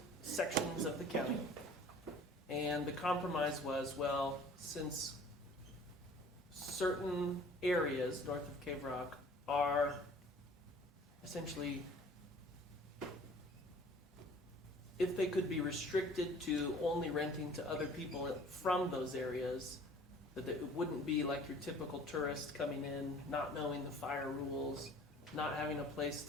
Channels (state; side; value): normal; both; correlation 0.49